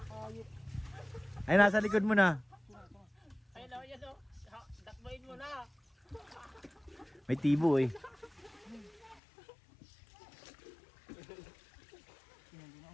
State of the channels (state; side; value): drops out; right; at 9.2 s